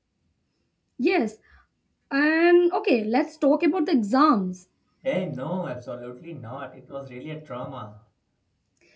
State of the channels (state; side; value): identical; both; correlation 1.00